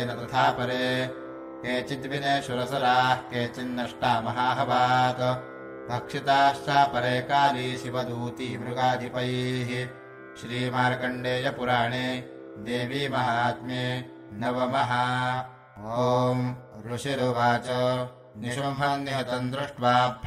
तथा परे केचिद्विनेषुरसराः केचिन्नष्टा महाहवात् भक्षिताश्चापरे काली शिवदूती मृगाधिपैः श्रीमार्कण्डेयपुराणे देवी महात्म्ये नवमः। ॐ ऋषिरुवाच निशुम्भम् निहतम् दृष्ट्वा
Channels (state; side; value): identical; both; correlation 1.00